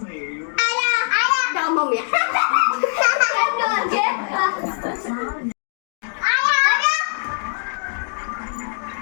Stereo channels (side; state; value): right; silent; 65 dB below the other